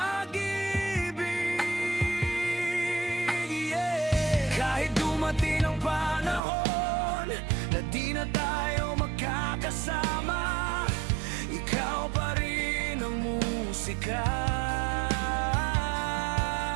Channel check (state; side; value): drops out; left; at 6.4 s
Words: Kahit dumating ang panahon na di na tayo magkakasama, ikaw pa rin ang musika.